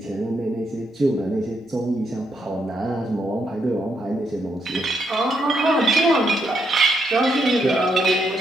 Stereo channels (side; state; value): both; normal; correlation 0.78